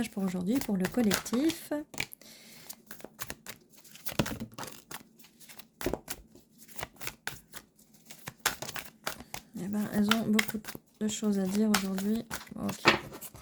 pour aujourd'hui pour le collectif? Eh ben, elles ont beaucoup de choses à dire aujourd'hui. Ok.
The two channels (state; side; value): identical; both; correlation 1.00